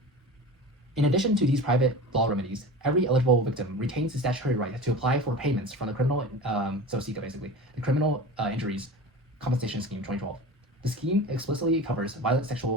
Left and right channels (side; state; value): both; normal; correlation 0.33